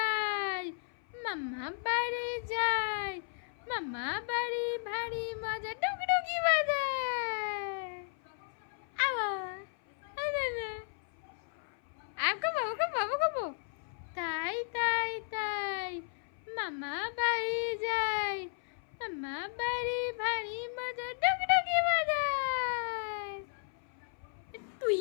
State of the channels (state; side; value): silent; right; 55 dB below the other